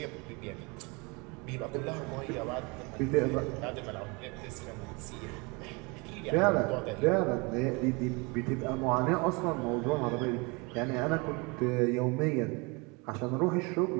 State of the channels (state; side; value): quieter; left; 28.4 dB